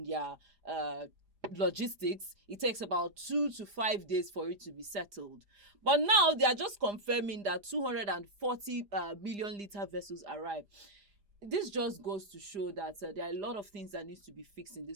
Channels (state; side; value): late; left; 4.9 ms